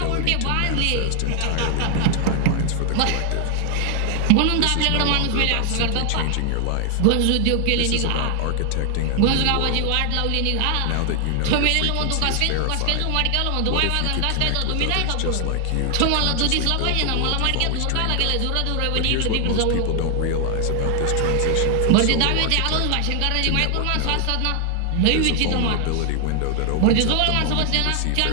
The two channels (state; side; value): different; both; correlation 0.00